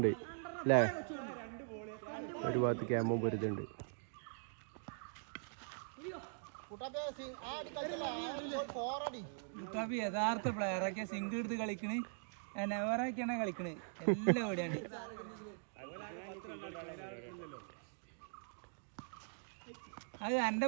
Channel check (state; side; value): silent; left; digital silence